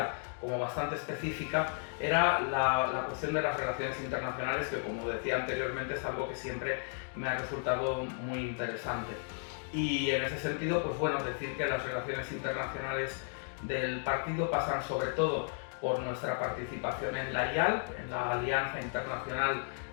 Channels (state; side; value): silent; right; 55 dB below the other